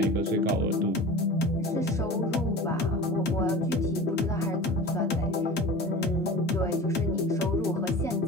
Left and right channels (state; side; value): normal; both; correlation 0.36